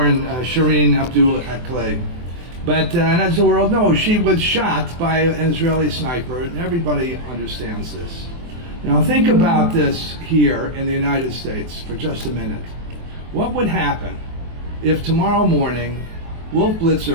Shireen Abdul Akleh. But and as the world knows, she was shot by an Israeli sniper, and everybody understands this. Now think about this here in the United States for just a minute. What would happen if tomorrow morning Wolf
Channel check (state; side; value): late; left; 24 ms